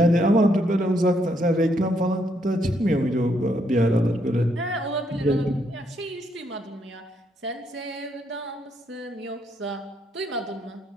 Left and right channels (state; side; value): normal; both; correlation 0.74